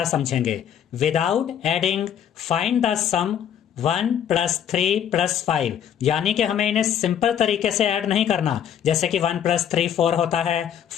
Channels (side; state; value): right; quieter; 9.3 dB